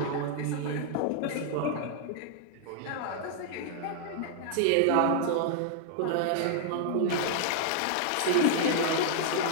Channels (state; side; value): different; both; correlation -0.01